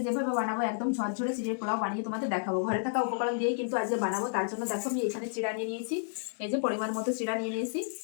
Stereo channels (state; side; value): silent; right; 57 dB below the other